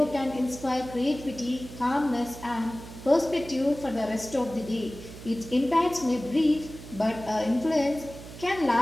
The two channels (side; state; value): right; noise; hum, 14 dB below the sound